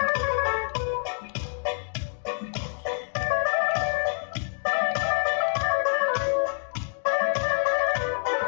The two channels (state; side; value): silent; right; 60 dB below the other